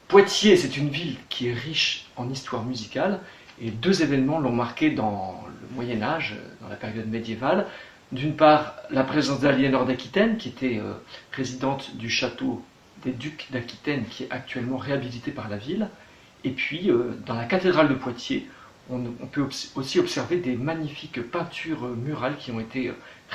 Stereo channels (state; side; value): identical; both; correlation 1.00